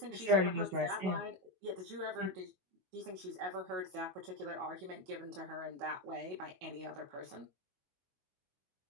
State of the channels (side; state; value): left; late; 22 ms